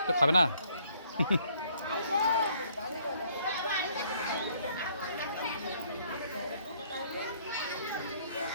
তো খাবে না?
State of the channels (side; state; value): both; inverted; correlation -0.64